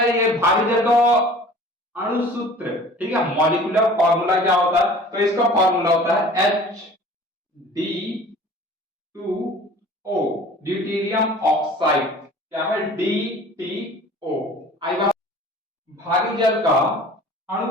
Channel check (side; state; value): both; normal; correlation 0.46